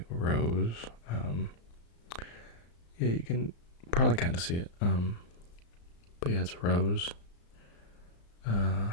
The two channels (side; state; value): right; late; 35 ms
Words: rose. Yeah, you can probably kind of see it. But yeah, it's a rose.